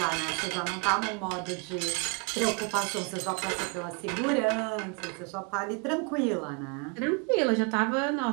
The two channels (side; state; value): left; quieter; 33.2 dB